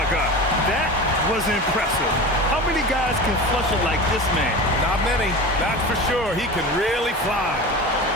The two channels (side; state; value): both; normal; correlation 0.31